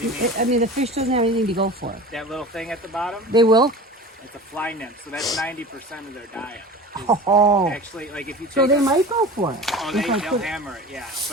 do you mean? I mean, the fish doesn't have anything to go for. That little thing at the bottom? They will. It's a fly nymph, so that's 90% of their diet. Oh. Actually, like if you take So they might go for it. oh, they'll hammer it, yeah.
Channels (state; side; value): normal; both; correlation 0.36